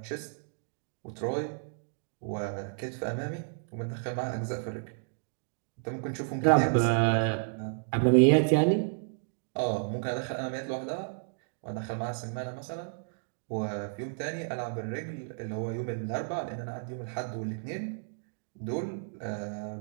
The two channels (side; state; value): left; silent; digital silence